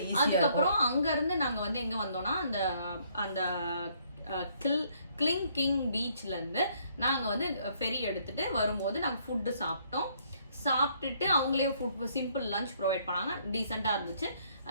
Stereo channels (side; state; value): both; inverted; correlation -0.66